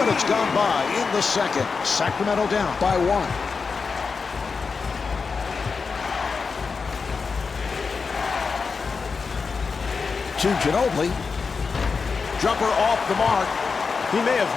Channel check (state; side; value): quieter; right; 5.0 dB